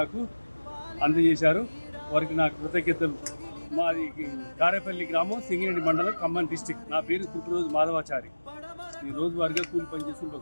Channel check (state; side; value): inverted; both; correlation -1.00